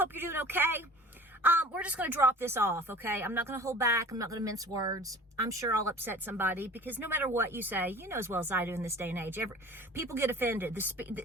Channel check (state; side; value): normal; both; correlation 0.44